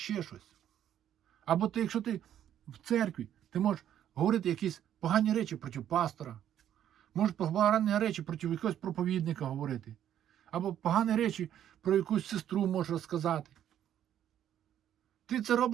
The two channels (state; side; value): quieter; left; 10.6 dB